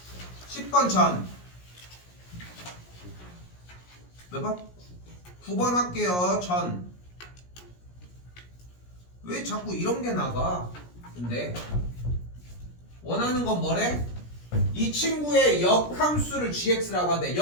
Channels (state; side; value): late; right; 17 ms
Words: 10번 전. 몇 번? 9번 할게요. 전. 왜 자꾸 이런 게 나가? 근데 원하는 건 뭐래? 이 친구의 역함수를 gx라고 하는데